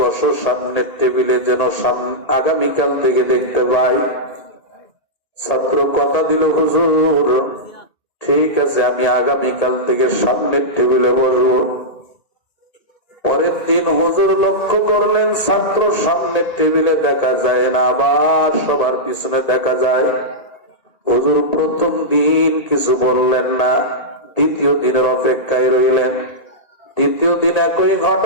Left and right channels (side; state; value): right; late; 1.8 ms